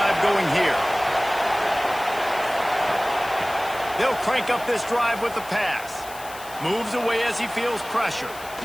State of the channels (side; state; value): left; noise; hiss, 16 dB below the sound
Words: going here. They'll crank up this drive with the pass. Moves away as he feels pressure.